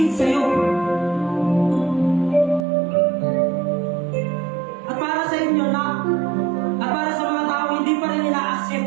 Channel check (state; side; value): drops out; left; at 2.7 s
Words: sa'yo. At para sa inyo na, at para sa mga tao hindi pa rin ina-accept